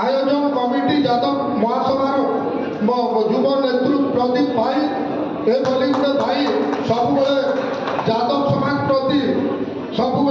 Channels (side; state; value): both; identical; correlation 1.00